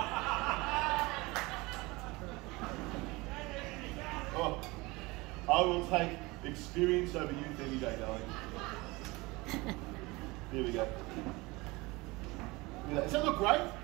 Oh, I will take experience over youth any day, darling. Here we go. Does that look great?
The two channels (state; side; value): quieter; left; 23.2 dB